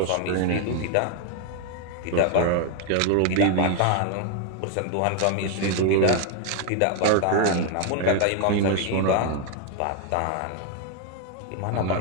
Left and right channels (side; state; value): both; different; correlation 0.01